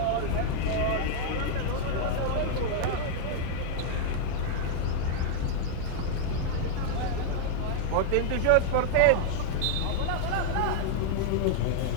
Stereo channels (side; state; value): both; different; correlation -0.01